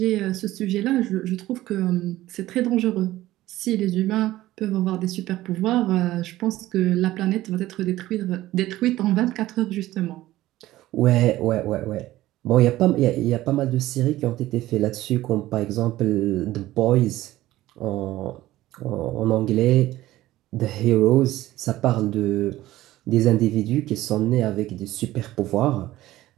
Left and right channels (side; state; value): left; quieter; 15.8 dB